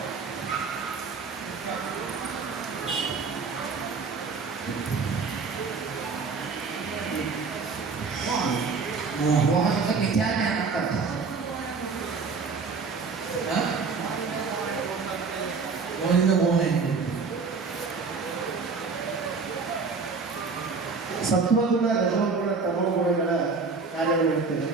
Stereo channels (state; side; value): quieter; left; 4.7 dB